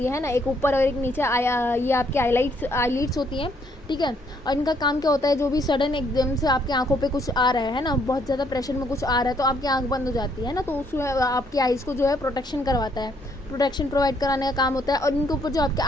है ना, एक ऊपर और एक नीचे। ये आपकी आईलिड्स होती हैं, ठीक है। और इनका काम क्या होता है, जो भी सडन एकदम से आपकी आंखों पे कुछ आ रहा है ना, बहुत ज़्यादा प्रेशर में कुछ आ रहा है, तो आपकी आंख बंद हो जाती है ना, तो उसमें आपकी आइज़ को जो है प्रोटेक्शन करवाता है, प्रोटेक्शन प्रोवाइड कराने का काम होता है। और इनके ऊपर जो आपके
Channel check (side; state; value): both; normal; correlation 0.69